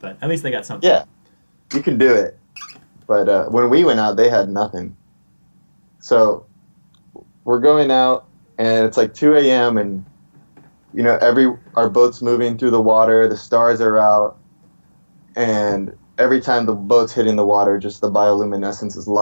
at least they got something. Yeah, you can do it. But when we went out, they had nothing. So we're going out, and it's like 2 a.m. and our boat's moving through the water. The stars are out, and every time the boat's hitting the water, just the bioluminescence is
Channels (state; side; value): inverted; both; correlation -1.00